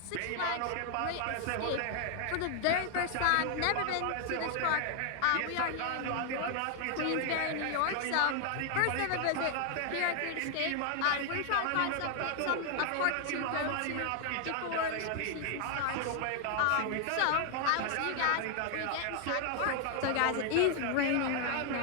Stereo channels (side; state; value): both; different; correlation 0.00